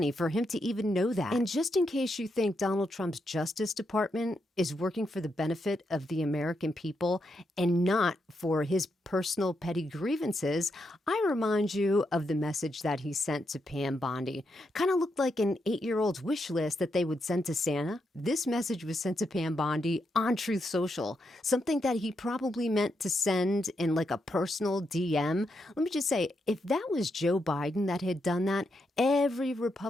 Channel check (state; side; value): normal; both; correlation 0.82